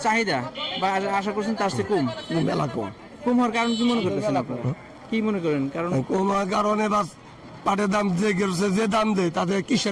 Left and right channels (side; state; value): both; identical; correlation 1.00